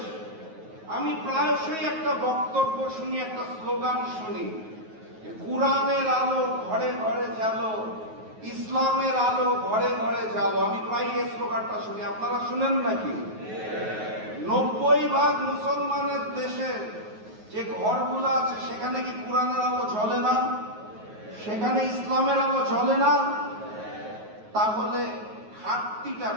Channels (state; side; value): late; left; 9.4 ms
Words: আমি প্রায়শই একটা বক্তব্য শুনি, একটা স্লোগান শুনি, কোরআনের আলো ঘরে ঘরে জ্বালো, ইসলামের আলো ঘরে ঘরে জ্বালো। আমি প্রায় এই স্লোগানটা শুনি, আপনারা শুনেন নাকি? 90% মুসলমানের দেশে যে ঘরগুলো আছে সেখানে কি কোরআনের আলো জ্বলে না? সেখানে ইসলামের আলো জ্বলে না? তাহলে ঘাটতিটা